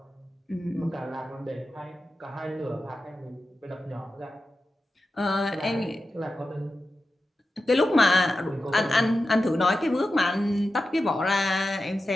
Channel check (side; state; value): both; normal; correlation 0.92